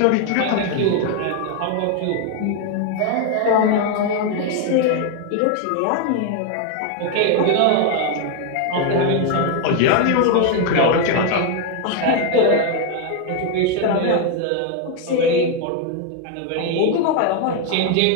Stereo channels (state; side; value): different; both; correlation 0.01